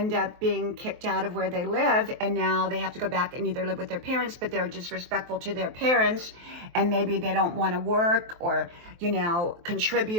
up being kicked out of where they live, and now they have to go back and either live with their parents, but they're disrespectful to their parents, and maybe they don't want to work or,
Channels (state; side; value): late; left; 23 ms